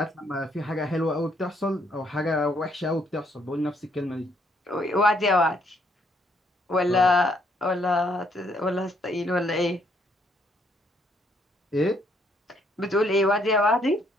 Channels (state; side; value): normal; both; correlation 0.70